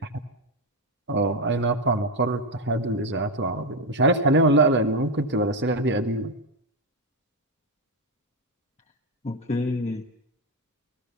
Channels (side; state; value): both; normal; correlation 0.07